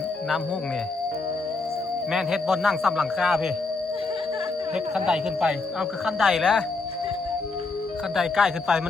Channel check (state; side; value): quieter; right; 3.8 dB